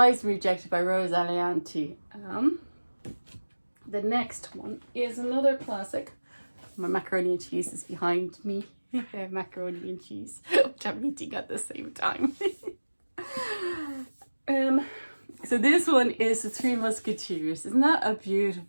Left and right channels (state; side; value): inverted; both; correlation -1.00